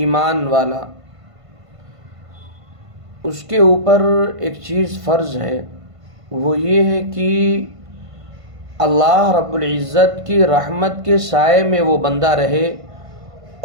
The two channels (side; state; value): left; late; 1.5 ms